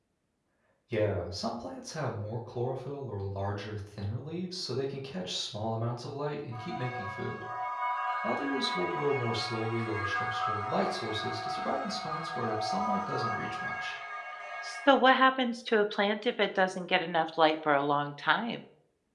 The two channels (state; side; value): identical; both; correlation 1.00